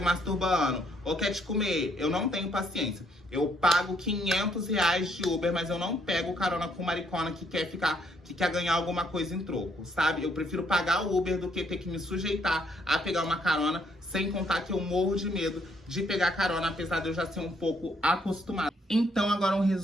ou quer te comer. Eu não tenho paciência. Eu pago R$ 500 de Uber, mas eu não pego carona com maricona que quer ganhar alguma coisa em troco, sabe? Eu prefiro pagar o Uber do que ter que me sujeitar a pegar uma carona, sem contar que eu morro de medo de pegar carona, apesar de eu já ser um pouco acostumado. Então, agora um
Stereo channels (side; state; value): both; normal; correlation 0.70